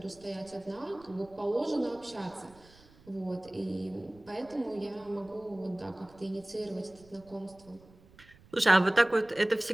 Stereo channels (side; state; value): right; noise; rumble, 26 dB below the sound